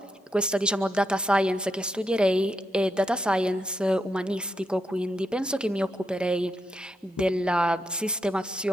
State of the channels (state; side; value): normal; both; correlation 0.82